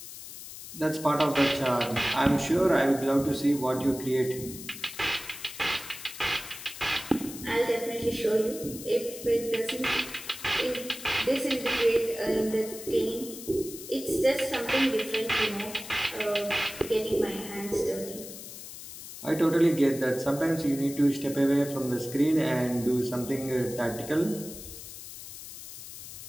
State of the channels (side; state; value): left; noise; hiss, 12 dB below the sound